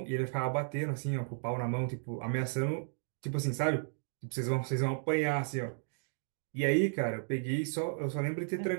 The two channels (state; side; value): silent; left; digital silence